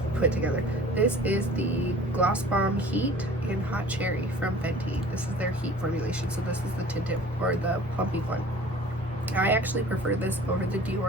put together. This is the Gloss Bomb Heat in Hot Cherry from Fenty. This is their heat formulation, so this is the tinted or the plumpy one. I actually prefer this over the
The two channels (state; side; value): normal; both; correlation 0.46